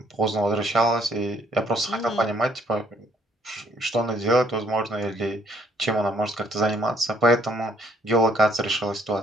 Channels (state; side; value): normal; both; correlation 0.65